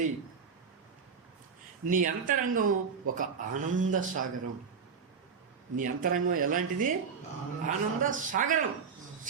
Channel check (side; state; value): left; quieter; 6.0 dB